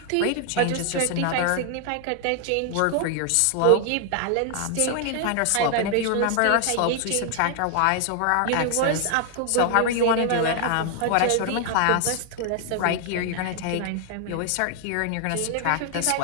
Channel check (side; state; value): both; different; correlation 0.00